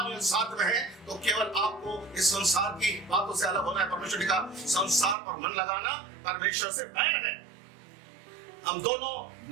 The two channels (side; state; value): left; drops out; at 5.2 s